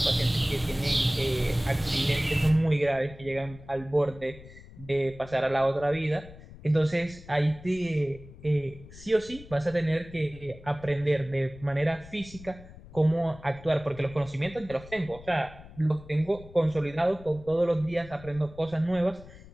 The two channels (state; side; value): noise; left; rumble, 18 dB below the sound